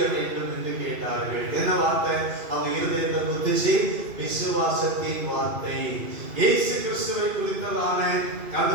வேண்டும் என்று கேட்டார்கள். என்ன வார்த்தை? அவங்க இருதயத்தை குத்துச்சு. விசுவாசத்தின் வார்த்தை, இயேசு கிறிஸ்துவை குறித்ததான அந்த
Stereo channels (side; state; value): left; late; 2.5 ms